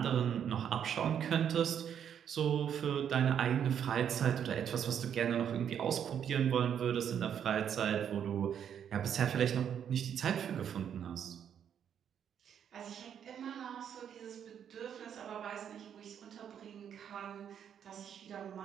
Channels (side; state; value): left; quieter; 8.7 dB